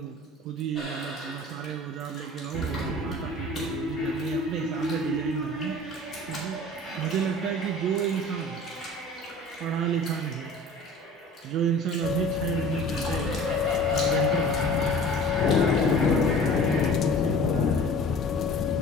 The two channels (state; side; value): normal; both; correlation 0.43